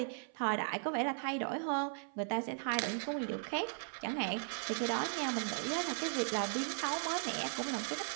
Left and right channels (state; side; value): silent; left; 53 dB below the other